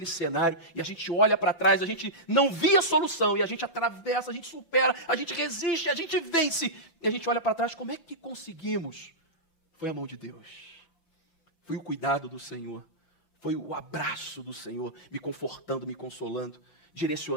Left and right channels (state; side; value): late; right; 5.8 ms